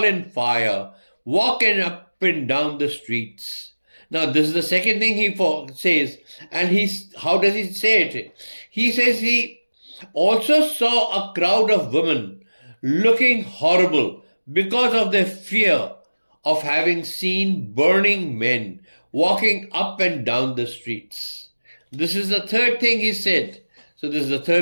in fire, walking up and down the streets. Now, this is the second thing he says. And how does he say it? He says he also saw a crowd of women looking horrible because of their fear of having seen burning men walking up and down the streets. This is the third thing he said. So this is the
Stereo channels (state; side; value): inverted; both; correlation -1.00